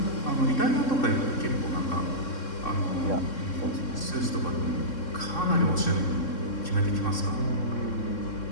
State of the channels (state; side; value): late; right; 3.7 ms